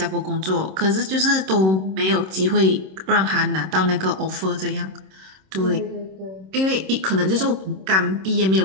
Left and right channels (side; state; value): left; late; 26 ms